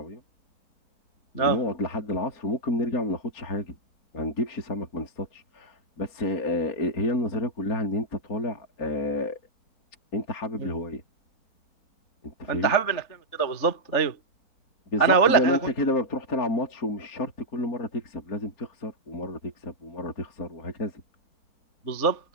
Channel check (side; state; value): right; late; 3.4 ms